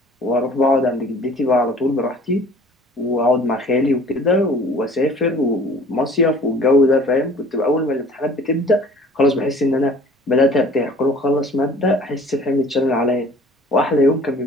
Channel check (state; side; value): normal; both; correlation 0.49